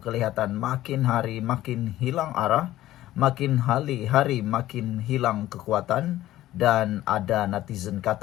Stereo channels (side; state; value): right; quieter; 14.6 dB